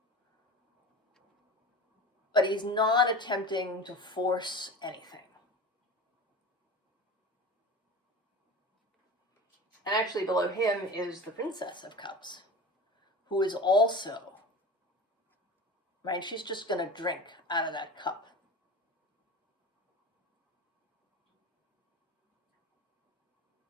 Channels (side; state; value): both; normal; correlation 0.33